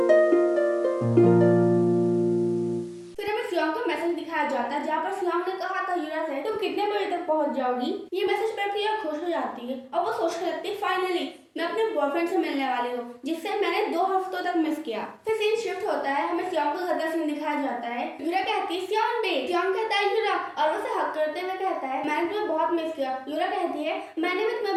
जाता है जहाँ पर सियोंग ने कहा था यूरा से तुम कितने बजे तक पहुंच जाओगी। ये मैसेज पढ़कर यूरा खुश हो जाती है और वो सोचने लगती है फाइनली मैं अपने बॉयफ्रेंड से मिलने वाली हूँ जिससे मैंने 2 हफ्तों तक मिस किया। फिर सीन शिफ्ट होता है, हमें सियोंग का घर का सीन दिखाया जाता है। यूरा कहती है सियोंग बे, सियोंग कहता है यूरा और उसे हक करते हुए कहता है मैंने तुम्हें बहुत मिस किया। यूरा कहती है मैंने भी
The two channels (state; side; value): identical; both; correlation 1.00